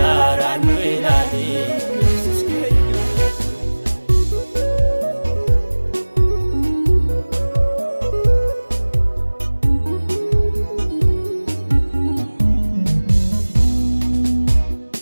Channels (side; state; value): both; inverted; correlation -1.00